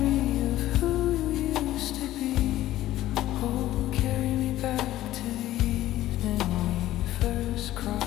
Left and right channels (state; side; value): quieter; right; 14.6 dB